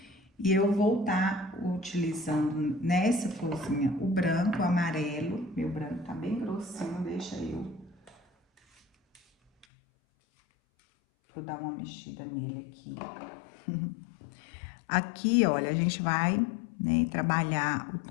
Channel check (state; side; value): drops out; right; at 9.7 s